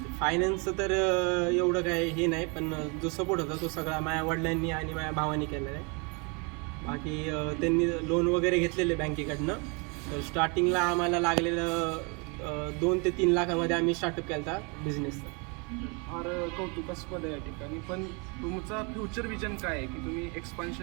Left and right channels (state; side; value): quieter; left; 32.3 dB